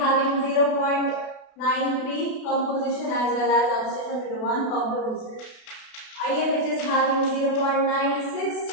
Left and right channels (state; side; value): late; right; 32 ms